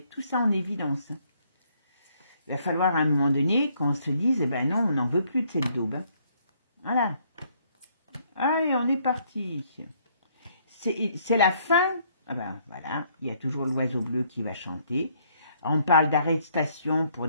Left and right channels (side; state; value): both; inverted; correlation -0.67